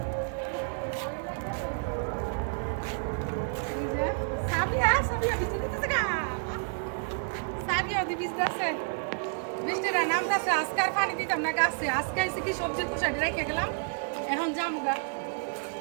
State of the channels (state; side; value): silent; left; digital silence